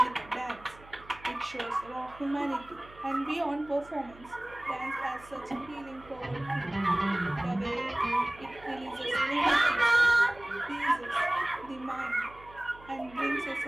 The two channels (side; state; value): right; noise; hum, 22 dB below the sound